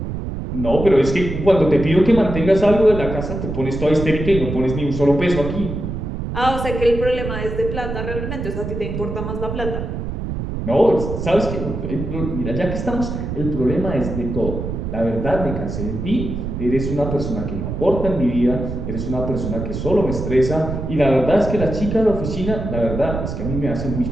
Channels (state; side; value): noise; right; rumble, 5 dB below the sound